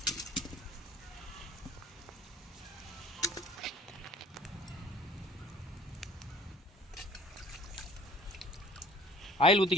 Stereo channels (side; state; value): both; normal; correlation 0.51